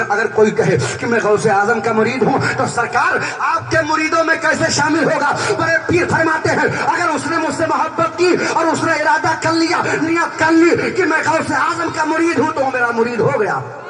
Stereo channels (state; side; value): identical; both; correlation 1.00